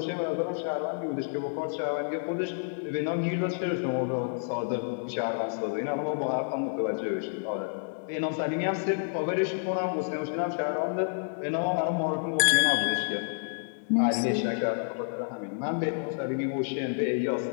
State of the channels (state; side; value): silent; right; digital silence